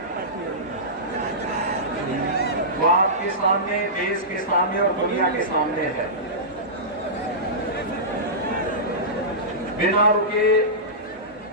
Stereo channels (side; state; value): both; normal; correlation -0.17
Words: वो आपके सामने, देश के सामने और दुनिया के सामने है। बिना रुके,